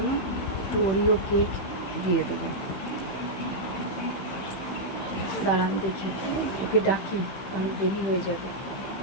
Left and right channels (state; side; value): late; right; 15 ms